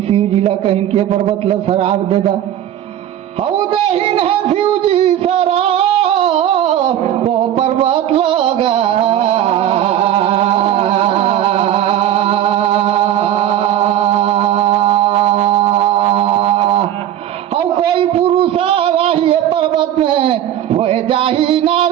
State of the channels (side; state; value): left; quieter; 11.3 dB